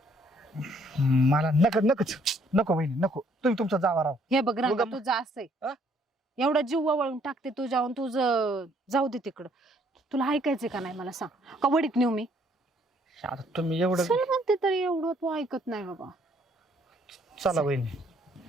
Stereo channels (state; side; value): normal; both; correlation 0.65